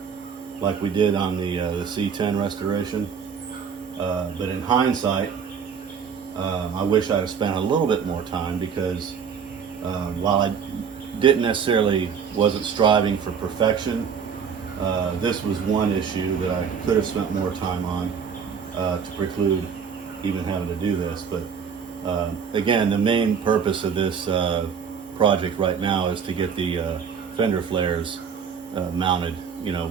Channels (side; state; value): left; quieter; 6.7 dB